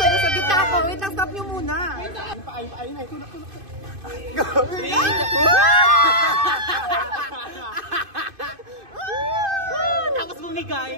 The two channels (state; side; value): late; left; 2.5 ms